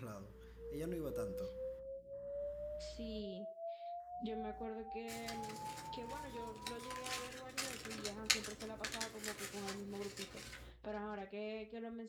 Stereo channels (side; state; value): both; identical; correlation 1.00